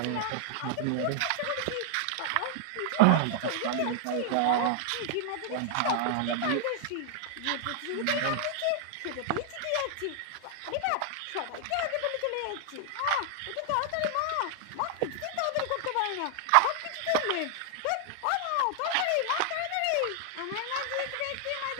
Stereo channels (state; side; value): different; both; correlation 0.00